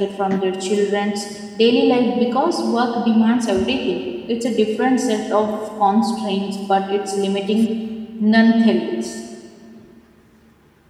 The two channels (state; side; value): identical; both; correlation 1.00